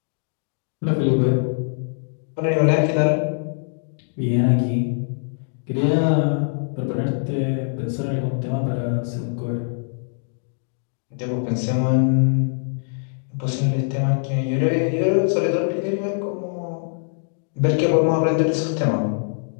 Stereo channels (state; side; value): silent; right; 64 dB below the other